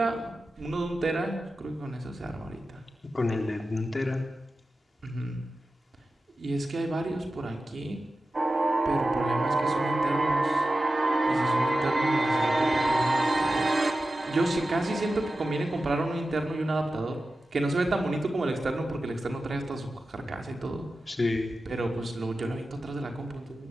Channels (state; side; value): normal; both; correlation 0.93